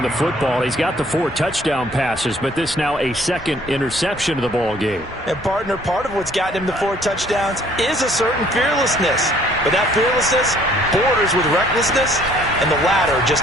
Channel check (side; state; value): both; normal; correlation 0.59